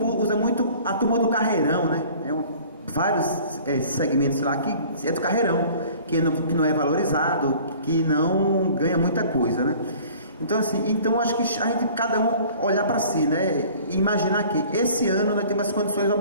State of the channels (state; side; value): inverted; both; correlation -0.49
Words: usa muito a turma do carreirão, né? Vários segmentos lá que é do carreirão, que não é valorizado, que não ganha muita coisa, né? Então, assim, acho que a gente, cada um olhar para si, né? E imaginar que esse ano nós temos as condições